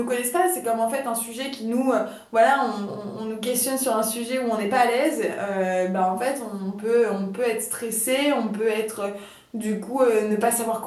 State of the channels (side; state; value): both; identical; correlation 1.00